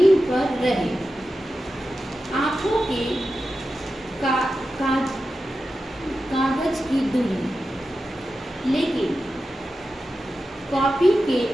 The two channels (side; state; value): both; normal; correlation 0.91